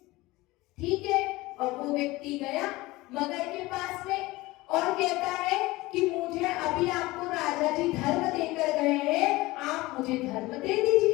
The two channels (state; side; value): quieter; right; 20.2 dB